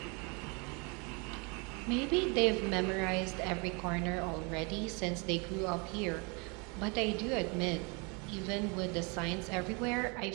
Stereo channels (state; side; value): quieter; left; 31.4 dB